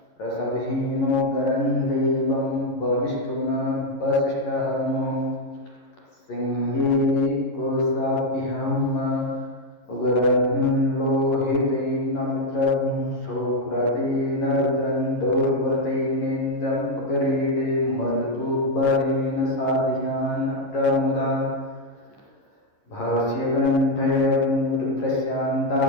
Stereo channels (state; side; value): late; right; 11 ms